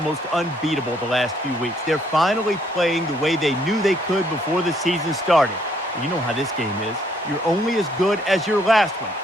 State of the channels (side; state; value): both; normal; correlation 0.68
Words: unbeatable the last few weeks. They're finally playing the way they knew they could before the season started. You know how this game is. You're only as good as your last one,